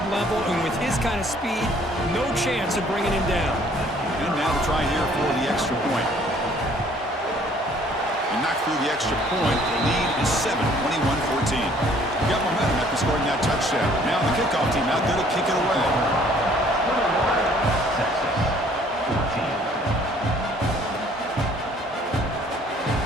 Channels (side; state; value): both; normal; correlation 0.58